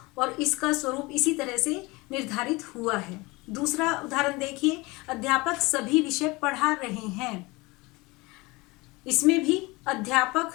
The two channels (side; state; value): right; quieter; 23.7 dB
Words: और इसका स्वरूप इसी तरह से निर्धारित हुआ है। दूसरा उदाहरण देखिए, अध्यापक सभी विषय पढ़ा रहे हैं। इसमें भी अध्यापक